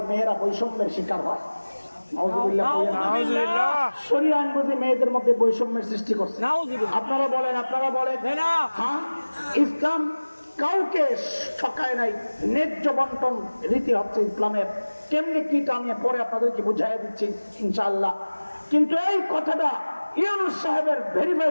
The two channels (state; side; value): inverted; both; correlation -1.00